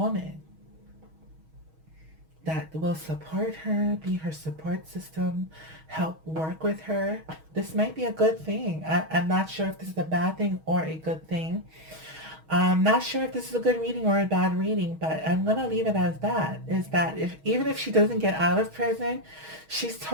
that will support her, be her support system, help work with her. This might be a good thing. I'm not sure if this is a bad thing or a good thing. I'm not sure if this is a good reading or a bad reading, but I'm gonna leave it as that. Is that if even if she doesn't get out of prison, she's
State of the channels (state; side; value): late; left; 6.3 ms